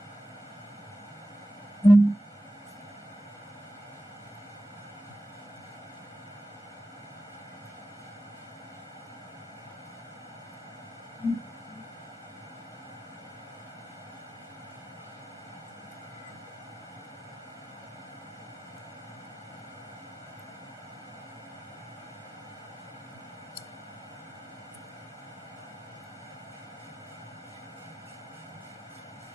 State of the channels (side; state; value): both; normal; correlation 0.91